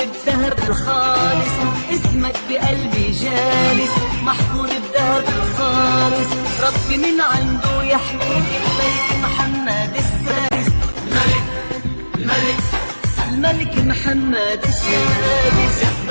الخالص، اسمك بقلبي جالس محفور بذهب الخالص. ربي من عنده يحميك الملك محمد السادس، الملك الملك محمد السادس.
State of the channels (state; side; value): inverted; both; correlation -1.00